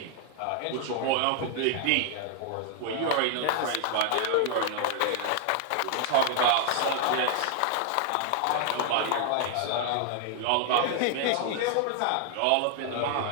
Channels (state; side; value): different; both; correlation 0.00